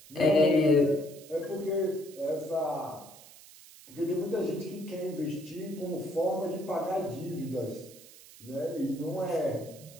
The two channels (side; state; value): right; noise; hiss, 20 dB below the sound